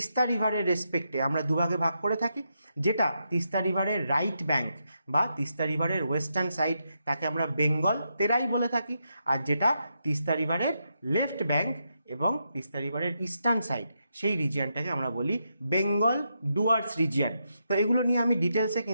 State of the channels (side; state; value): both; inverted; correlation -0.83